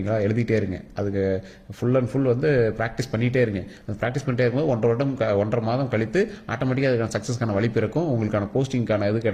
எழுதிட்டே இருங்க. அதுக்கு ஃபுல் அண்ட் ஃபுல் வந்து ப்ராக்டிஸ் பண்ணிகிட்டே இருங்க. அந்த ப்ராக்டிஸ் பண்ணிட்டே இருக்கும்போது 1.5 மாதம் கழித்து ஆட்டோமேட்டிக்காக அதுக்கான சக்ஸஸ்க்கான வழி பிறக்கும். உங்களுக்கான போஸ்டிங்கான இது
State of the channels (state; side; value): identical; both; correlation 1.00